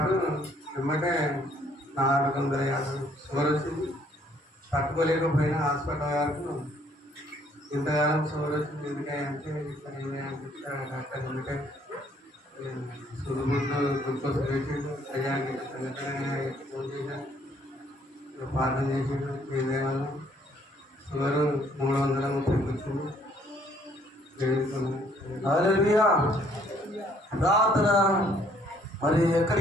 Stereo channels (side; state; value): both; normal; correlation 0.63